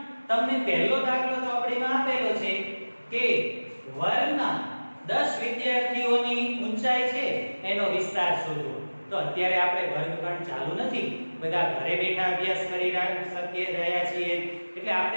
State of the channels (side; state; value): both; inverted; correlation -1.00